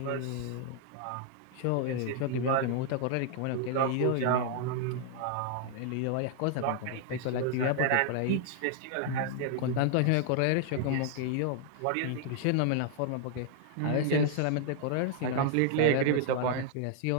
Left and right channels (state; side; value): different; both; correlation 0.00